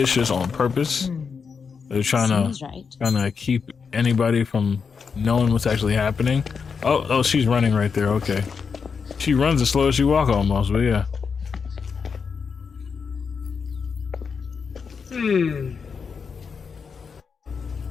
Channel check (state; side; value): quieter; right; 5.8 dB